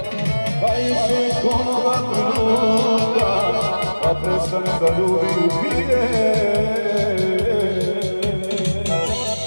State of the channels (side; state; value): both; inverted; correlation -1.00